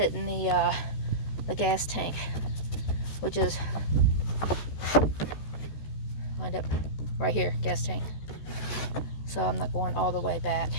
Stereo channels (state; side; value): late; right; 14 ms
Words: the gas tank, which is lined up right here, gas tank. So I'm not going all the way back.